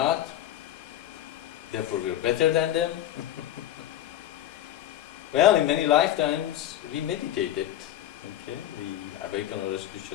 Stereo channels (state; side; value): quieter; right; 12.4 dB